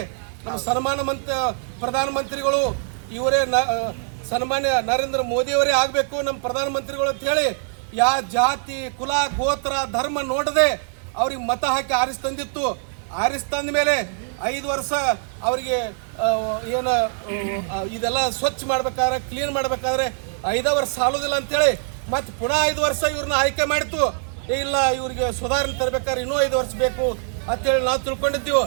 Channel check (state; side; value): silent; left; digital silence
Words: ನಮ್ಮ ಪ್ರಧಾನಮಂತ್ರಿಗಳು ಇವರೇ ಸನ್ಮಾನ್ಯ ನರೇಂದ್ರ ಮೋದಿಯವರೇ ಆಗಬೇಕು ನಮ್ಮ ಪ್ರಧಾನಮಂತ್ರಿಗಳು ಅಂತ ಹೇಳಿ ಜಾತಿ ಕುಲ ಗೋತ್ರ ಧರ್ಮ ನೋಡದೆ ಅವ್ರಿಗೆ ಮತ ಹಾಕಿ ಆರಿಸ್ತಂದಿತ್ತು. ಆರಿಸ್ತಂದ ಮೇಲೆ 5 ವರ್ಷ ಅವರಿಗೆ ಏನು ಇದೆಲ್ಲ ಸ್ವಚ್ಛ ಮಾಡ್ಬೇಕಾದ್ರೆ ಕ್ಲೀನ್ ಮಾಡ್ಬೇಕಾದ್ರೆ 5 ವರ್ಷ ಸಾಲೋದಿಲ್ಲ ಅಂತೇಳಿ ಮತ್ತೆ ಪುನಃ 5 ವರ್ಷ ಇವ್ರನ್ನ ಆಯ್ಕೆ ಮಾಡಿತ್ತು. ಇಲ್ಲ ಇವ್ರಿಗೆ ಸುಧಾರಣೆ ತರಬೇಕಾದ್ರೆ ಇನ್ನೂ 5 ವರ್ಷ ಬೇಕು ಅಂತೇಳಿ ನಾವು ತಿಳ್ಕೊಂಡಿದ್ದೀವಿ.